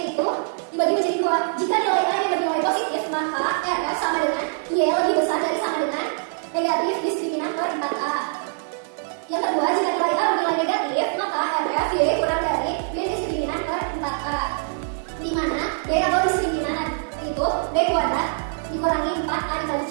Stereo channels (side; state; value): left; silent; digital silence